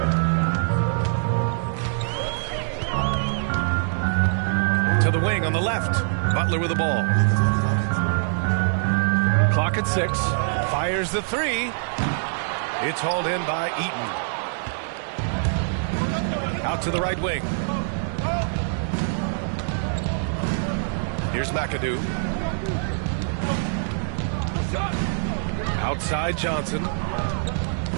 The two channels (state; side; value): silent; left; digital silence